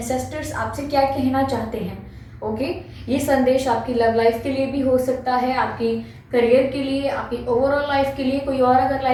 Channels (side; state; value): both; identical; correlation 1.00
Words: आपसे क्या कहना चाहते हैं। ओके, ये संदेश आपकी लव लाइफ के लिए भी हो सकता है, आपकी करियर के लिए, आपकी ओवरऑल लाइफ के लिए, कोई और अगर